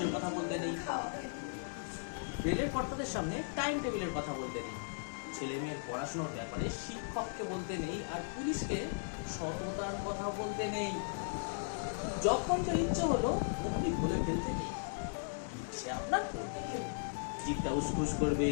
কথা বলতে নেই, রেলের কর্তাদের সামনে টাইম টেবিলের কথা বলতে নেই, ছেলে মেয়ের পড়াশোনার ব্যাপারে শিক্ষককে বলতে নেই, আর পুলিশকে সততার কথা বলতে নেই। যখন যা ইচ্ছে হলো অমনি বলে ফেলতে নেই। সে আপনার জিভটা উসখুস করবে,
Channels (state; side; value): silent; right; digital silence